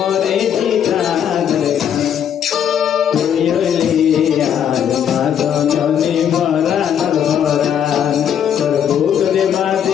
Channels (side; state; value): right; quieter; 8.9 dB